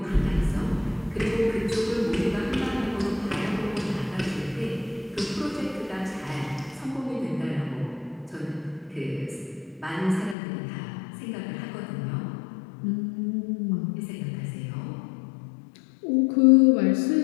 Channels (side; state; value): right; drops out; at 10.4 s